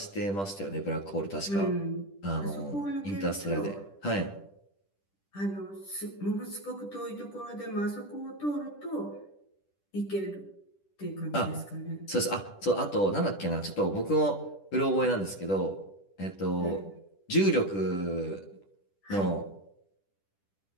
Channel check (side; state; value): right; late; 10 ms